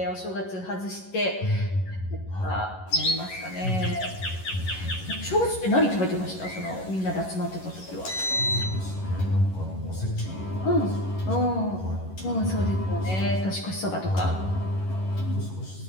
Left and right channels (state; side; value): late; right; 11 ms